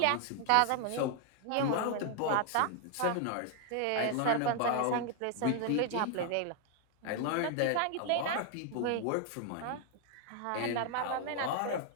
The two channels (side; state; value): both; different; correlation 0.00